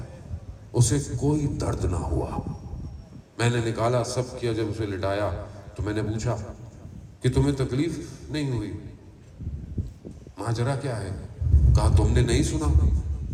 اسے کوئی درد نہ ہوا۔ میں نے نکالا، سب کیا، جب اسے لٹایا تو میں نے پوچھا کہ تمہیں تکلیف نہیں ہوئی؟ ماجرا کیا ہے؟ کہا تم نے نہیں سنا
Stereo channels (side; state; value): both; identical; correlation 1.00